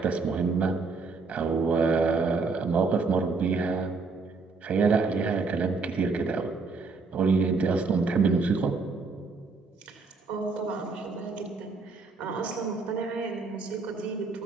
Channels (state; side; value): quieter; left; 4.2 dB